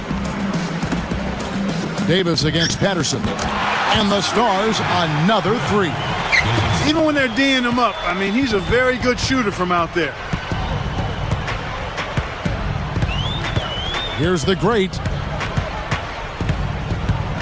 Davis against Patterson. And the Stars, another 3. Even when they're D'ing him up, I mean, he's a very good shooter from out there. Here's the great.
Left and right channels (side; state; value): both; identical; correlation 1.00